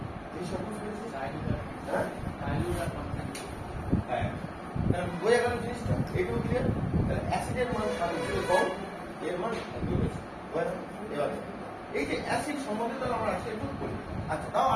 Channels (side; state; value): both; identical; correlation 1.00